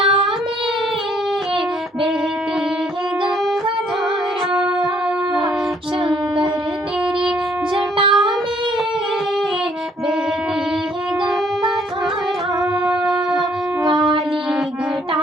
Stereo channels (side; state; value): both; normal; correlation 0.65